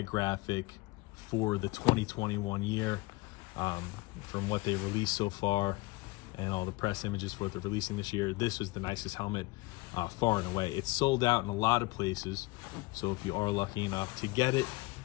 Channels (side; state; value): right; quieter; 22.6 dB